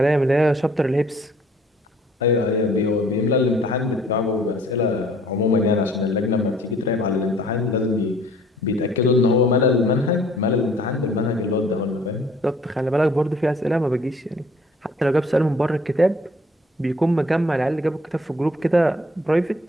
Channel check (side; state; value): both; normal; correlation 0.57